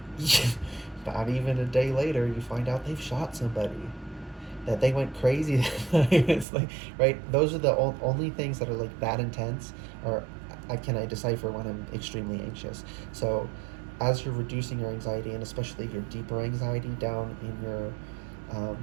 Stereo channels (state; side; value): drops out; left; at 6.5 s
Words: not even a day later, you find out they've shot somebody, that they went crazy. It's like, right? Those are the only things that are like that intense, or I decipher when I'm extremely anxious. So as you're reducing your anxiety, and especially your deeper anxiety down in your